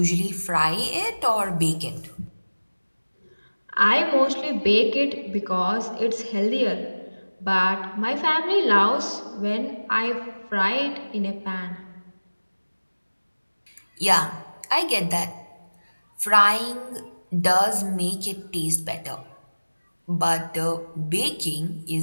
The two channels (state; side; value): inverted; both; correlation -1.00